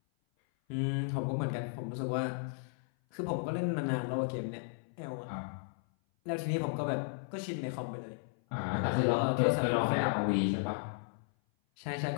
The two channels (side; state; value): right; silent; 55 dB below the other